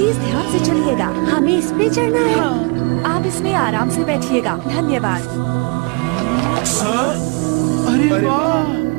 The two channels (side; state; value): left; quieter; 30.9 dB